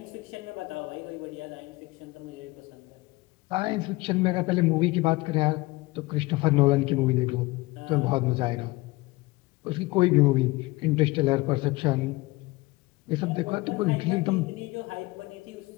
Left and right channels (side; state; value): right; quieter; 21.6 dB